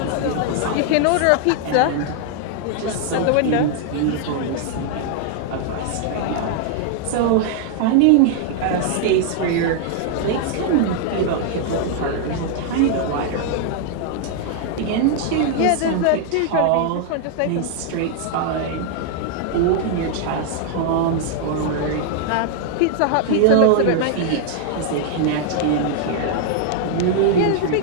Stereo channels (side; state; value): both; different; correlation 0.00